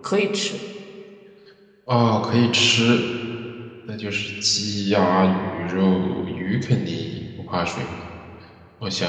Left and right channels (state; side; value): identical; both; correlation 1.00